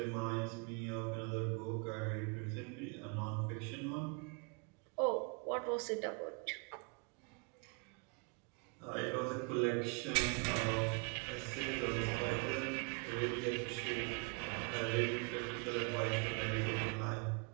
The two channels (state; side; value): quieter; left; 34.7 dB